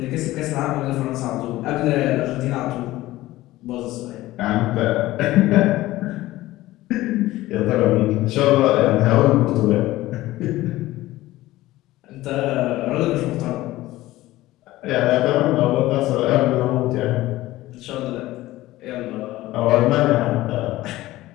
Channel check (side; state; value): right; quieter; 17.0 dB